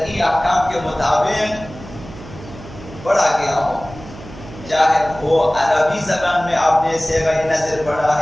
احکام کے مطابق پڑھا گیا ہو، چاہے وہ عربی زبان میں آپ نے صیغہ نظر پڑھا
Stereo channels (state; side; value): noise; right; hum, 16 dB below the sound